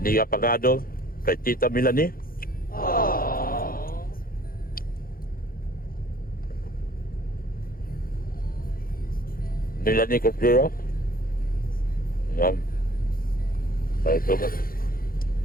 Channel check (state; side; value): late; right; 0.42 ms